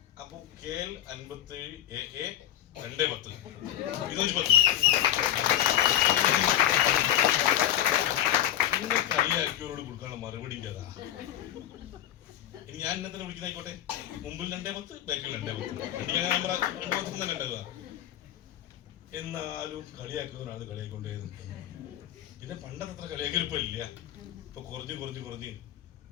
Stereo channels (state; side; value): quieter; right; 11.9 dB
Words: അപ്പൊ KL 57 AA 210 പിന്നെ കളിയാക്കിയവരോട് കൊടുക്കാനുള്ള മറുപടി അതാ. ഇനി ഞാൻ എന്നെ തന്നെ വിളിക്കുന്നതായിക്കോട്ടെ, മുമ്പിൽ 210 ബാക്കിൽ 210 വണ്ടി നമ്പർ 210 തന്നെ ഉണ്ടാവുക. എന്നാലും കളിയാക്കുന്നവരാണ് കളിയാക്കൊണ്ടേത്. പിന്നെ പണ്ടത്ര കളിയാക്കലിപ്പോ ഇല്ല. ഇപ്പൊ കുറഞ്ഞ്